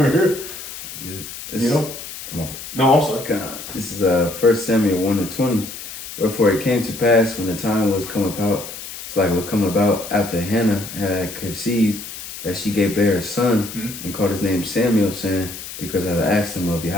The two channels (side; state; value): left; noise; hiss, 11 dB below the sound